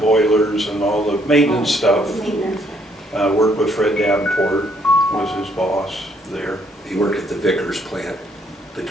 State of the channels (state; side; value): normal; both; correlation 0.68